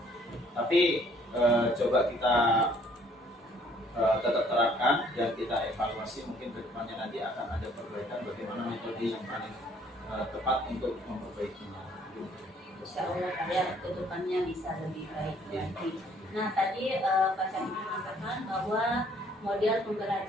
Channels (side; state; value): both; normal; correlation 0.61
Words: Tapi coba kita tetap terapkan dan kita evaluasi, mungkin ke depannya nanti akan ada perbaikan bagaimana metode yang paling tepat untuk memperbaikinya. Insya Allah Pak ya, ke depannya bisa lebih baik lagi. Nah tadi Pak Syahid mengatakan bahwa model